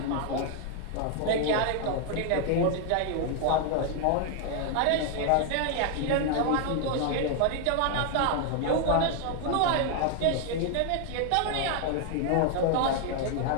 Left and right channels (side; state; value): both; different; correlation 0.00